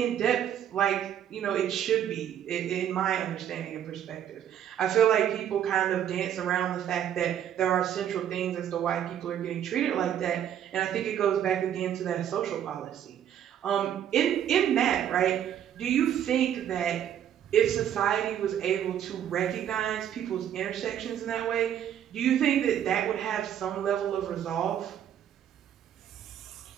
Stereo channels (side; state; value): left; quieter; 10.1 dB